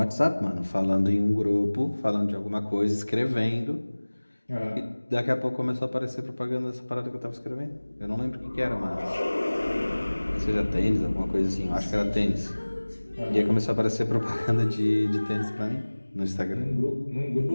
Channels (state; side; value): inverted; both; correlation -1.00